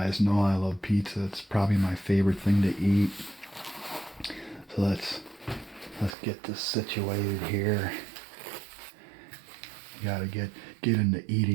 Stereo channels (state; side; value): drops out; left; at 6.2 s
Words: know I love pizza. It's probably my favorite thing to eat. So let's get this situated here. You gotta get into